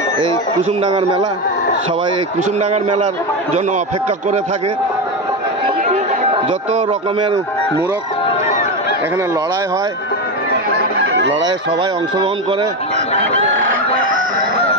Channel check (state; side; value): normal; both; correlation 0.14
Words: এই কুসুমডাঙ্গার মেলা। সবাই এই কুসুমডাঙ্গার মেলার জন্য অপেক্ষা করে থাকে। যত রকমের মূরখ এখানে লড়াই হয়, লড়াইয়ে সবাই অংশগ্রহণ করে।